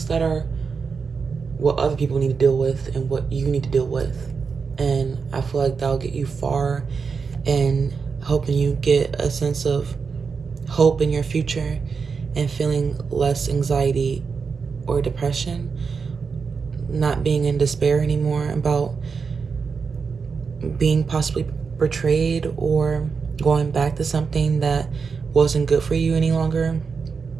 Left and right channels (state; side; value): quieter; left; 5.4 dB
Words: that are what other people need to deal with and what you need to deal with. And I feel like that'll get you far and helping you get a sense of hope in your future and feeling less anxiety or depression, not being in despair anymore about being possibly betrayed or going back to something that wasn't good for you any longer.